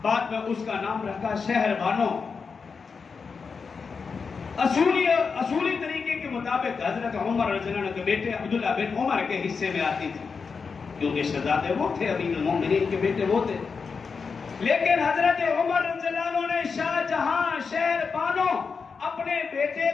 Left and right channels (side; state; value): right; quieter; 5.3 dB